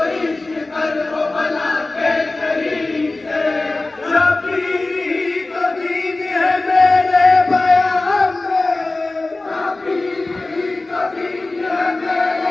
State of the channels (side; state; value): right; quieter; 3.1 dB